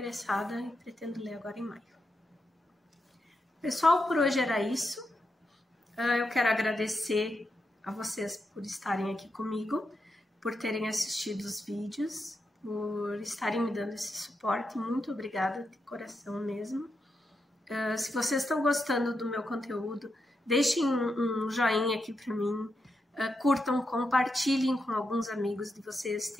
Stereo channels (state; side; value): normal; both; correlation 0.85